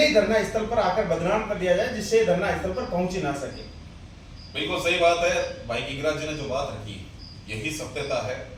ही धरना स्थल पर आकर बदनाम कर दिया जाए, जिससे धरना स्थल पर पहुंच ही ना सके। बिल्कुल सही बात है भाई गिरिराज जी ने जो बात रखी, यही सत्यता है।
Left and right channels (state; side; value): identical; both; correlation 1.00